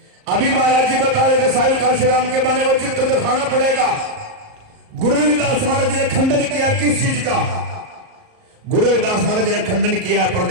अभी महाराज जी बता रहे थे साहिब काशीराम के बने वो चित्र दिखाना पड़ेगा। गुरु रविदास महाराज जी ने खंडन किया किस चीज का? गुरु रविदास महाराज जी ने खंडन किया, पर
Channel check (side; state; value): left; late; 38 ms